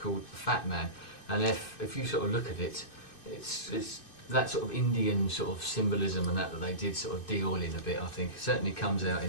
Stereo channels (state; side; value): late; right; 2.6 ms